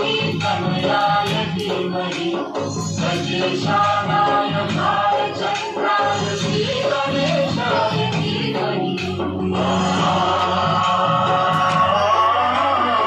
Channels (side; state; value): both; identical; correlation 1.00